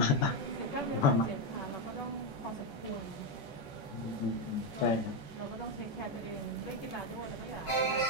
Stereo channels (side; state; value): right; late; 14 ms